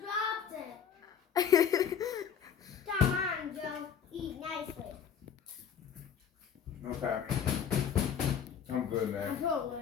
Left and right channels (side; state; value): right; quieter; 7.9 dB